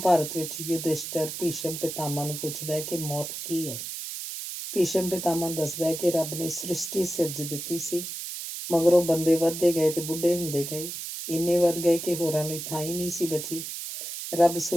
ਵਿੱਚ ਯੁਧਿਸ਼ਟਰ ਭੀਸ਼ਮ ਪਿਤਾਮਾ ਨੂੰ ਪੁੱਛਦਾ ਹੈ ਕਿ ਮੌਤ ਕੀ ਹੈ। ਭੀਸ਼ਮ ਪਿਤਾਮਾ ਦੱਸਦਾ ਹੈ ਕਿ ਰੱਬ ਨੇ ਸ੍ਰਿਸ਼ਟੀ ਸਿਰਜ ਦਿੱਤੀ ਸੀ, ਮਗਰੋਂ ਬੰਦੇ ਵੱਧਦੇ ਗਏ ਤੇ ਬੁੱਢੇ ਹੁੰਦੇ ਗਏ, ਇੰਨੇ ਵੱਧ ਗਏ ਕਿ ਹੋਰਾਂ ਲਈ ਥਾਂ ਹੀ ਨਹੀਂ ਸੀ ਬਚੀ। ਰੱਬ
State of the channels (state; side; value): noise; right; hiss, 7 dB below the sound